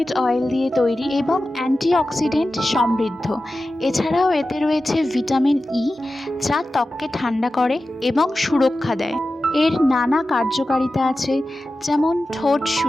অয়েল দিয়ে তৈরি এবং অ্যান্টিঅক্সিডেন্ট সমৃদ্ধ। এছাড়াও এতে রয়েছে ভিটামিন ই, যা ত্বককে ঠান্ডা করে এবং সুরক্ষা দেয়। এর নানা কার্যকারিতা আছে, যেমন ঠোঁট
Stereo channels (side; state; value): both; normal; correlation 0.94